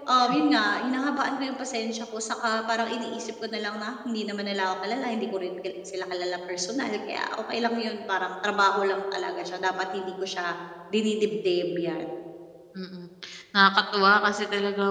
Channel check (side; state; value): both; identical; correlation 1.00